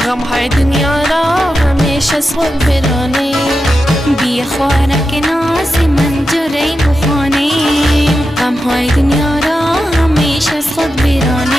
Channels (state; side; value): normal; both; correlation 0.89